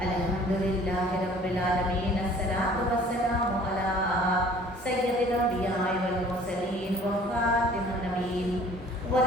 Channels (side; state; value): both; normal; correlation 0.52